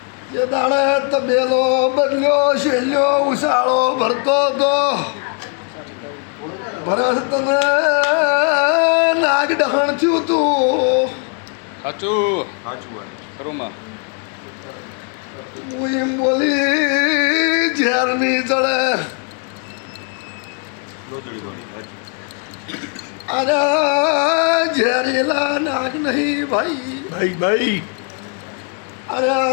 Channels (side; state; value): right; quieter; 39.1 dB